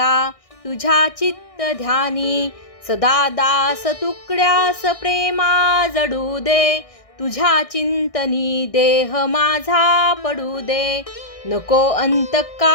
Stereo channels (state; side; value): late; right; 1.6 ms